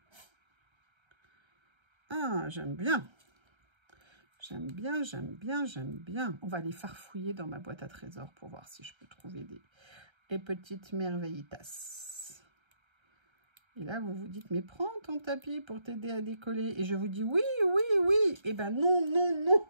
Ah, j'aime bien. J'aime bien, j'aime bien, j'aime bien. On va aller farfouiller dans ma boîte à trésors pour voir si je peux trouver des petites merveillitas. Et là, vous vous dites, mais prends ton tapis pour t'aider à décoller. Et je vous dis, oui, oui, oui. Eh ben non, non, non.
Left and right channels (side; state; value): left; late; 1.3 ms